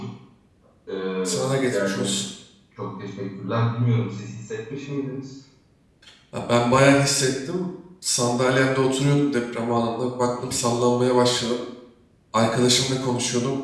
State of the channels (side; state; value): both; identical; correlation 1.00